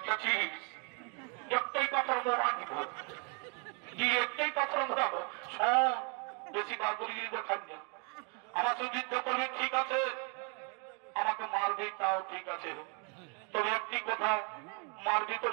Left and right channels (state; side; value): quieter; left; 36.4 dB